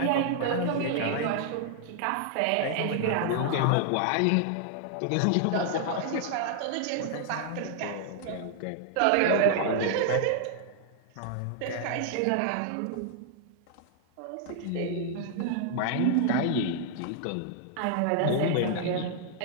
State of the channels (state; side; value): different; both; correlation 0.00